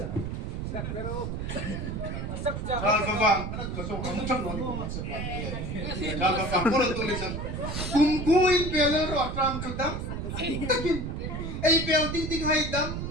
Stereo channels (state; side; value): noise; right; rumble, 4 dB below the sound